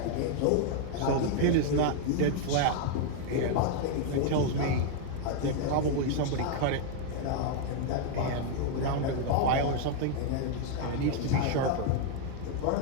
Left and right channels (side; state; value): both; different; correlation 0.00